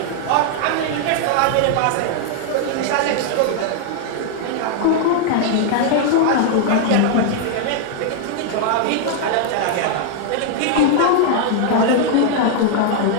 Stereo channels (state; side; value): different; both; correlation 0.00